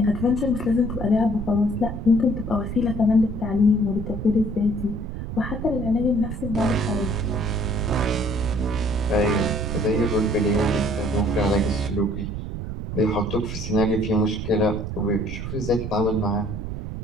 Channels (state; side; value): noise; right; rumble, 6 dB below the sound